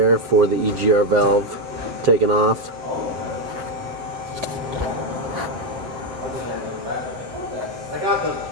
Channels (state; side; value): late; left; 7.2 ms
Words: for the EGR valve taken off.